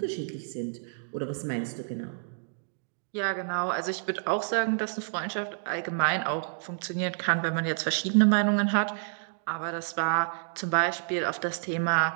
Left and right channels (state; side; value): silent; left; digital silence